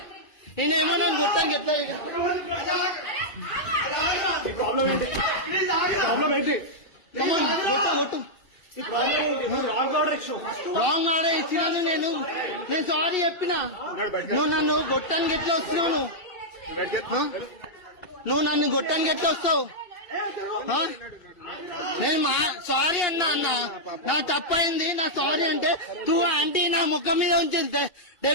నేనేమో నన్ను కొట్టానికి ఎట్లా కొట్టు రాంగ్ ఆర్డర్ ఇచ్చినాను నేను సారీ చెప్పినా నువ్వు నన్ను గొట్టానికి ఎట్లా వస్తున్నావు నువ్వు నన్ను గొట్టానికి ఎట్లా వస్తావు నేను సారీ అన్నా నా తప్పైంది నా సారీ అంటే టూ ఆంటీ నా ముఖం మీద ఉంచింది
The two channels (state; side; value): late; right; 2.3 ms